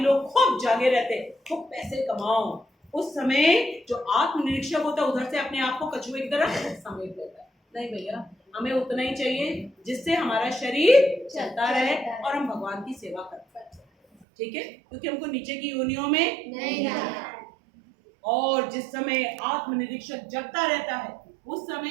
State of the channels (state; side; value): drops out; left; at 14.2 s